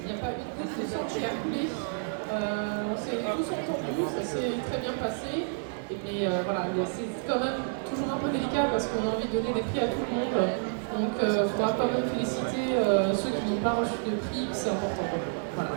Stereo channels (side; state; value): left; silent; digital silence